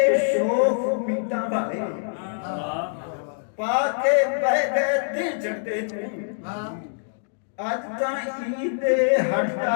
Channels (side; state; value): right; silent; digital silence